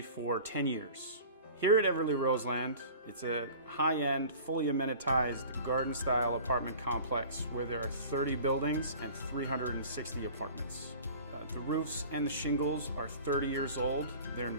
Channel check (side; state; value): both; inverted; correlation -0.42